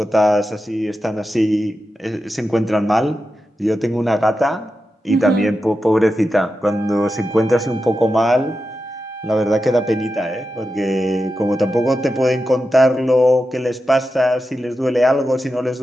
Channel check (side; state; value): both; normal; correlation 0.90